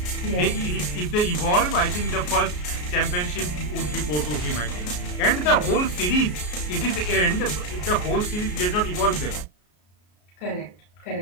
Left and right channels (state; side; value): late; right; 33 ms